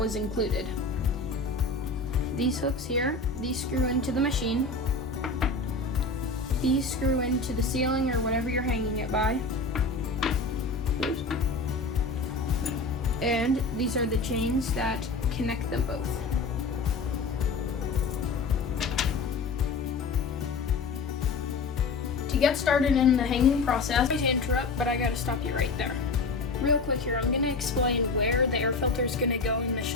was included. These hooks here, these screw into the machine. These screw into the ceiling or whatever you're hanging it by. Oops. And these are the chains that connect them both. To get started in the hanging process, sorry to interrupt, but I gotta stop you right there. Real quick here, I'm gonna explain where the air filter is gonna go in the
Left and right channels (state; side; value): quieter; right; 3.8 dB